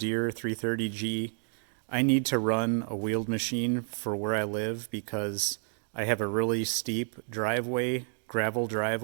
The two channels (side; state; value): left; silent; 58 dB below the other